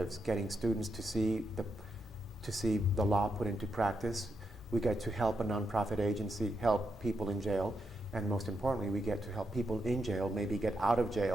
getting students to see the law put into practice. We get to help a nonprofit agency help people in jail, and most importantly, we get to help people in jail maybe get out of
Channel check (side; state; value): both; normal; correlation 0.82